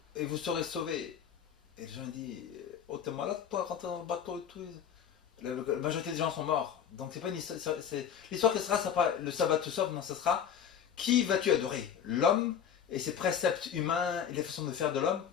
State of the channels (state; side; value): quieter; right; 8.4 dB